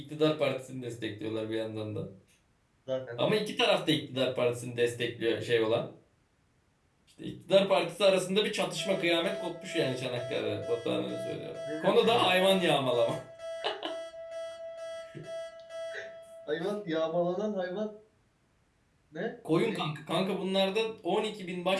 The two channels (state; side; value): identical; both; correlation 1.00